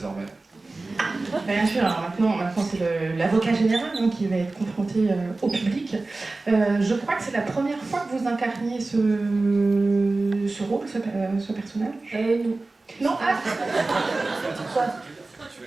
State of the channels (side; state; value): left; quieter; 3.3 dB